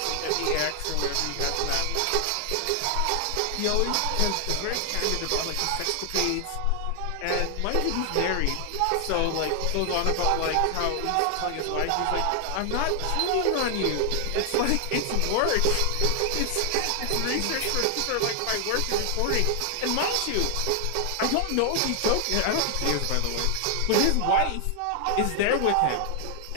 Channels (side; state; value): both; different; correlation 0.00